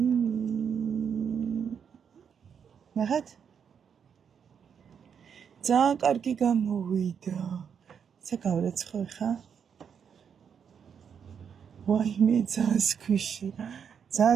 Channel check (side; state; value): left; quieter; 7.3 dB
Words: ნახეთ? ძალიან კარგი გამოვიდა. ცა გავრეცხო ხა? ვაიმე ძალიან სქვიში.